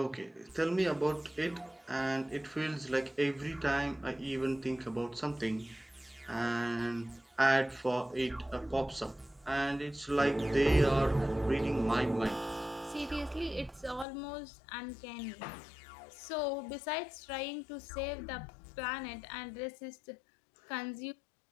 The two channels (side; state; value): right; drops out; at 14.1 s